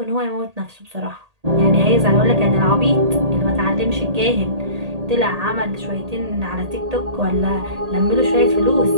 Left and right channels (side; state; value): left; late; 1.8 ms